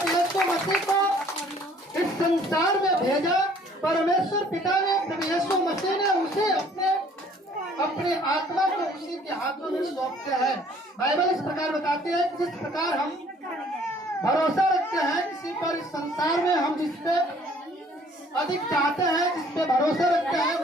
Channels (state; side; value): normal; both; correlation 0.58